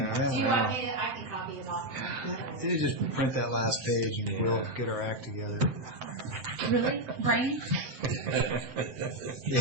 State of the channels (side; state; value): left; late; 7.7 ms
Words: want me to, I can copy it off. You just print that last page, and we'll get our act together. Really? Brian?